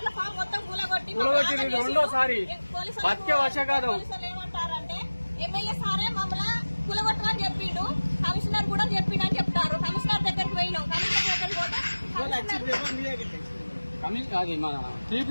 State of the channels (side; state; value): both; inverted; correlation -1.00